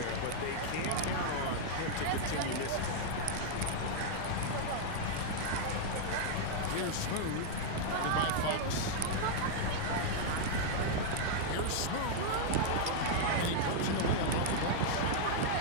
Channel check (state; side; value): different; both; correlation -0.01